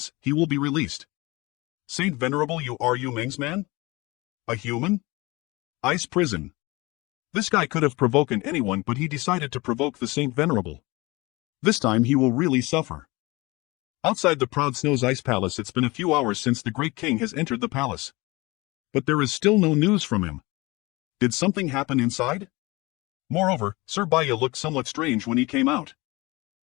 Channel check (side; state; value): right; quieter; 23.0 dB